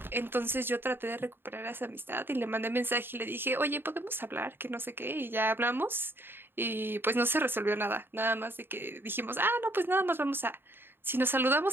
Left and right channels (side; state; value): left; late; 0.10 ms